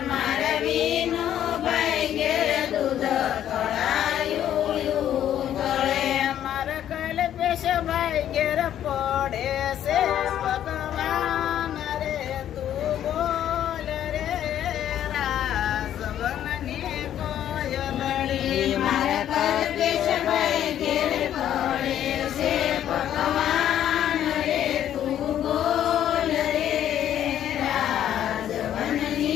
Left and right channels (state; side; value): quieter; right; 10.8 dB